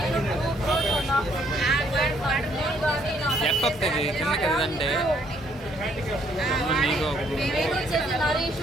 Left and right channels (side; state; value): both; normal; correlation 0.67